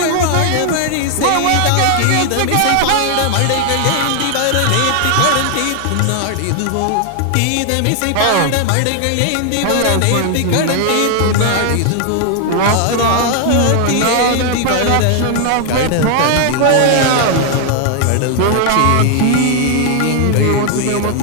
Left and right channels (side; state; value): both; different; correlation 0.00